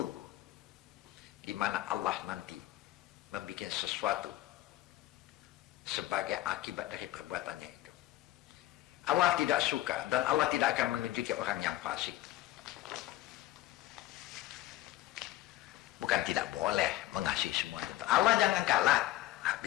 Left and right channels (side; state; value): right; quieter; 15.5 dB